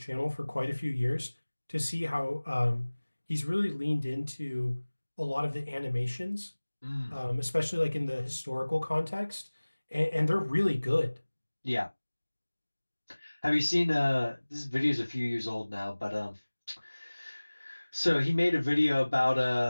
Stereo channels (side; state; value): both; inverted; correlation -1.00